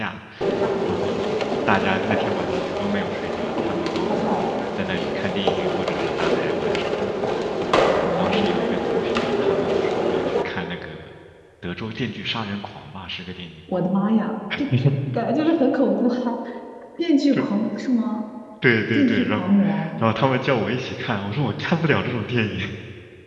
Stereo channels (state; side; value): identical; both; correlation 1.00